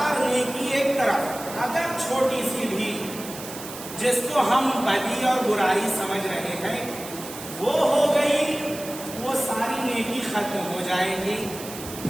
نیکی ایک طرف، اگر چھوٹی سی بھی جس کو ہم بدی اور برائی سمجھ رہے ہیں وہ ہو گئی، وہ ساری نیکی ختم ہو جائے گی۔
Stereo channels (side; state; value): right; noise; hiss, 12 dB below the sound